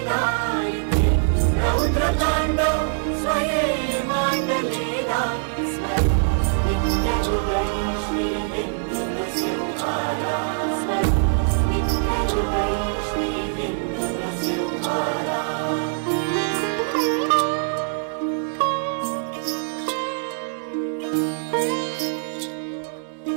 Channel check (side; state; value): left; silent; digital silence